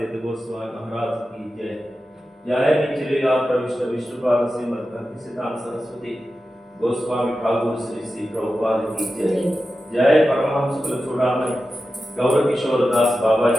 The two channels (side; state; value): both; normal; correlation 0.92